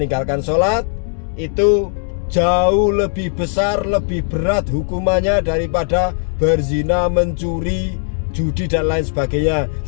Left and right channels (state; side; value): silent; right; digital silence